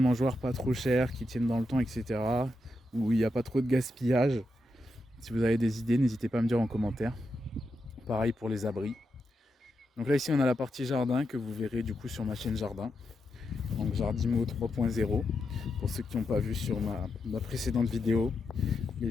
pas trop chères, qui tiennent dans le temps, etc., où il n'y a pas trop de gaspillage, si vous avez des idées, n'hésitez pas à me dire en commentaire. Pareil pour les abris. Donc là ici on a la partie jardin que vous verrez du coup sur ma chaîne jardin. Donc Jardimo 3.0, pour ceux qui n'ont pas vu sur ma précédente vidéo. Les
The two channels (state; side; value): normal; both; correlation 0.85